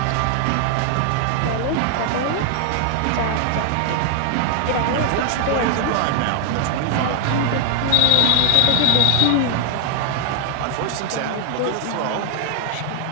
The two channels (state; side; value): different; both; correlation 0.00